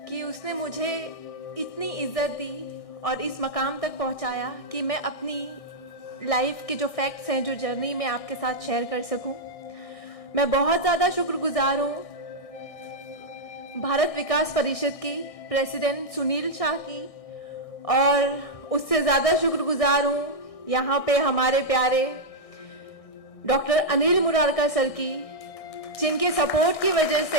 कि उसने मुझे इतनी इज़्ज़त दी और इस मकाम तक पहुँचाया कि मैं अपनी लाइफ के जो फैक्ट्स हैं, जो जर्नी में आपके साथ शेयर कर सकूँ। मैं बहुत ज़्यादा शुक्रगुजार हूँ भारत विकास परिषद की प्रेसिडेंट सुनील शाह की, और उससे ज़्यादा शुक्रगुजार हूँ यहाँ पे हमारे प्यारे डॉक्टर अनिल मुरारका सर की, जिनके सपोर्ट की वजह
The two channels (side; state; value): right; late; 1.6 ms